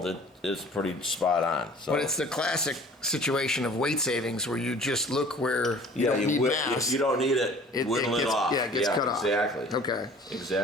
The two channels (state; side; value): normal; both; correlation 0.48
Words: it is pretty spot on. So. But it's the classic situation of weight savings where you just look where you don't need mass. You don't need it, whittle it off. Yeah, it gets cut off. Exactly. Okay.